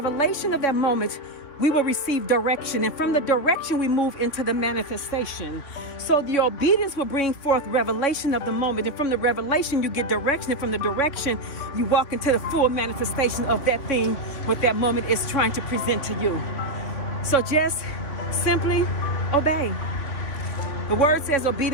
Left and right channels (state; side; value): late; right; 3.6 ms